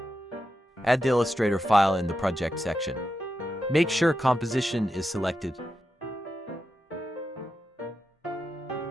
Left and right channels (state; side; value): normal; both; correlation 0.88